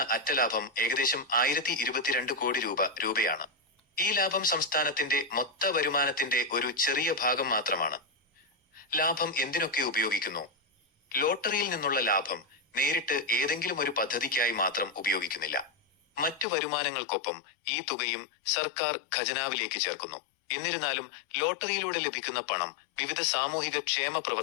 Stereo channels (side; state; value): right; drops out; at 16.4 s